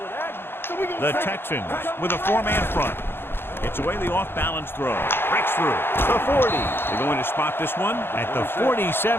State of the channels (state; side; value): late; right; 0.11 ms